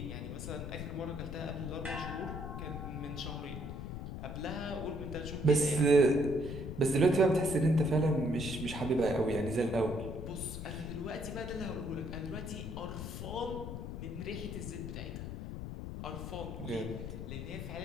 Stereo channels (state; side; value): noise; left; rumble, 7 dB below the sound